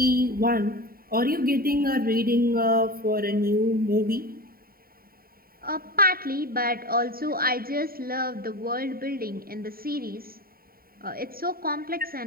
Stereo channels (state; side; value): late; left; 0.43 ms